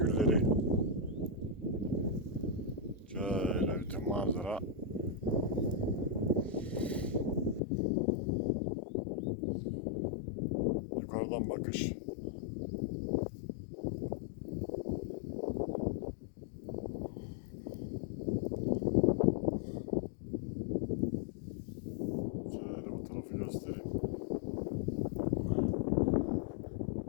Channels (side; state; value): right; drops out; at 7.6 s